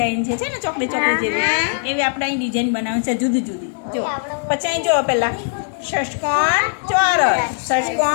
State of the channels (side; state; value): right; silent; 66 dB below the other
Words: છે ને ચોકડી ચોકડી જેવી, એવી આપણે અહીં ડિઝાઇન બનાવવાની છે જુદી જુદી. જો પછી અહીં જુઓ પહેલાં ષષ્કોણ ચોરસ.